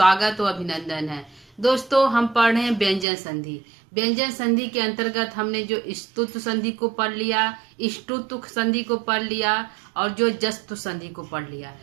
और अभिनंदन है। दोस्तों, हम पढ़ रहे हैं व्यंजन संधि। व्यंजन संधि के अंतर्गत हमने जो स्तुत्व संधि को पढ़ लिया, इष्टुत्व संधि को पढ़ लिया और जो जस्तु संधि को पढ़ लिया।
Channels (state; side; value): drops out; left; at 3.1 s